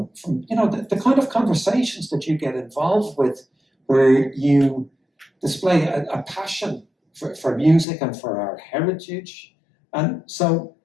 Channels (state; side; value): drops out; right; at 7.9 s